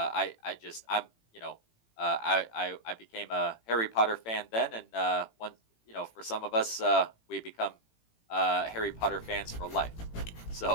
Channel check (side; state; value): right; late; 18 ms